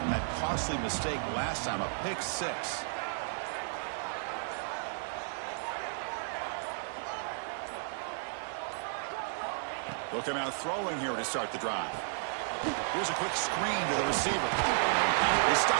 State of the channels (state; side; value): silent; left; digital silence